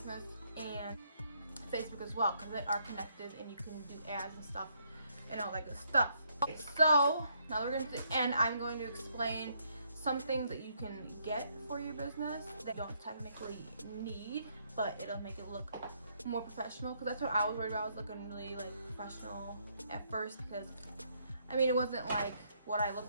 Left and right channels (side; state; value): both; inverted; correlation -0.72